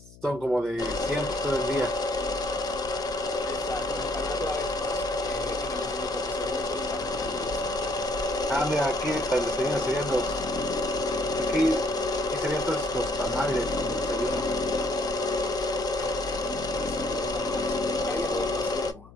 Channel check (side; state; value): left; noise; hum, 22 dB below the sound